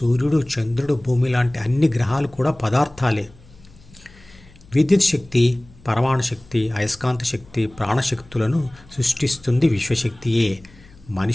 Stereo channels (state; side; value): noise; left; hum, 25 dB below the sound